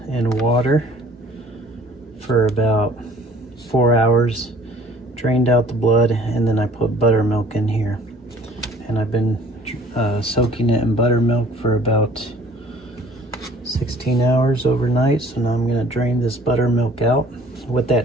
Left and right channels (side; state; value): both; normal; correlation 0.53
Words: in water for about 4 hours, drained out the blood, and then I put buttermilk in here. And I've been soaking it in buttermilk for about 16 hours overnight, so now I'm going to drain this buttermilk out. What